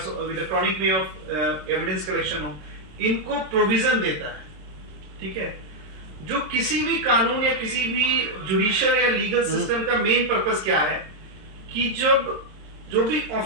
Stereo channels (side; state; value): left; late; 27 ms